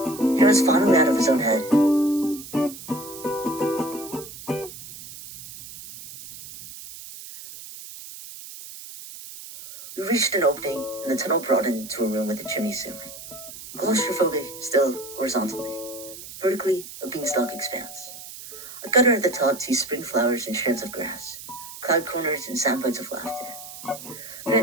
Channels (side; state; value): right; noise; hiss, 13 dB below the sound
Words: was finally out of his own head. We reached an opening, and the tunnel broadened to a room with a chimney ceiling. Claustrophobic, still horizontally. Vertically, a beanstalk expanse. A gutter at the top teased spring flowers and strands of grass, cloud corners and sound bites of laughter.